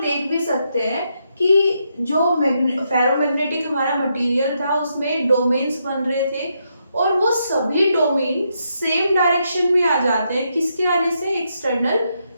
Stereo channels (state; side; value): inverted; both; correlation -0.80